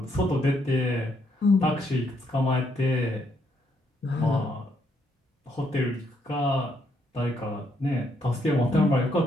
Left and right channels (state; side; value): normal; both; correlation 0.74